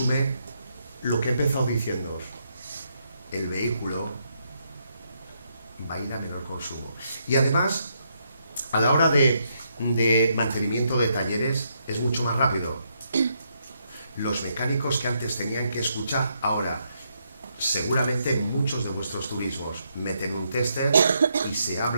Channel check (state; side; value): inverted; both; correlation -0.78